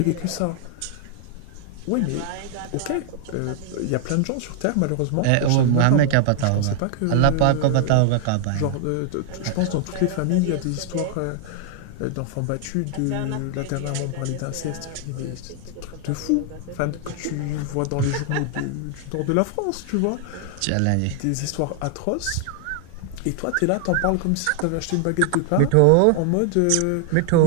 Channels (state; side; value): different; both; correlation 0.00